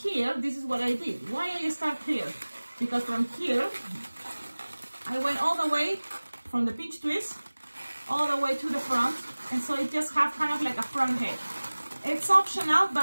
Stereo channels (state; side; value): inverted; both; correlation -1.00